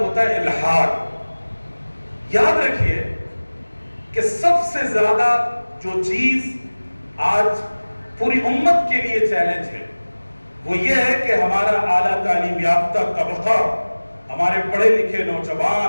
ہوتا ہے الحاد. یاد رکھیے کہ سب سے زیادہ جو چیز آج پوری امت کے لیے چیلنج ہے وہ یہ ہے کہ ہمارا اعلیٰ تعلیم یافتہ طبقہ، ہمارے پڑھے لکھے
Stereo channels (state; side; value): inverted; both; correlation -1.00